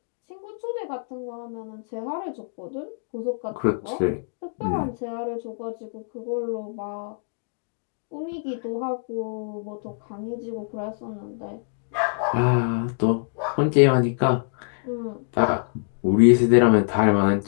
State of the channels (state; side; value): silent; right; digital silence